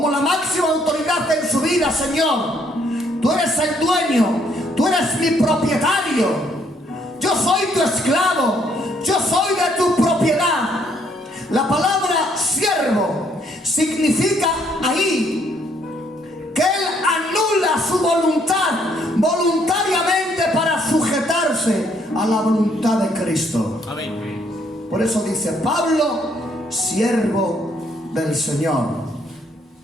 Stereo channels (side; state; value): both; normal; correlation 0.68